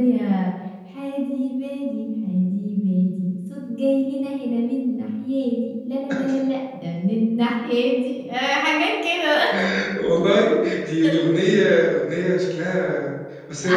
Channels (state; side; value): identical; both; correlation 1.00